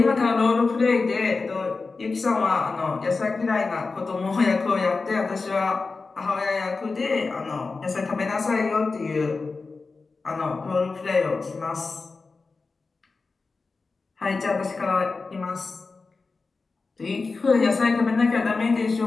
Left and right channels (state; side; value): quieter; right; 4.1 dB